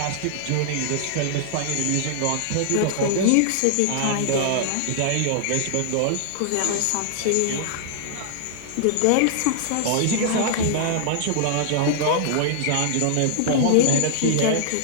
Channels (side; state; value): both; different; correlation -0.01